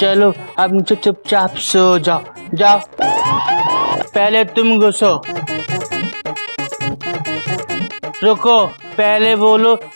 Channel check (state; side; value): inverted; both; correlation -1.00